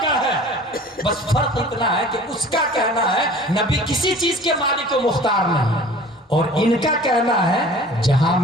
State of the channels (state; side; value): normal; both; correlation 0.45